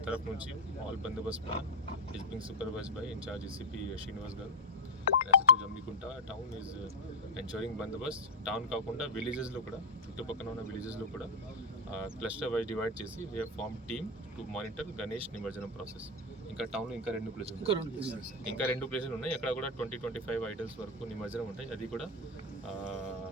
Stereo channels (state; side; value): normal; both; correlation 0.07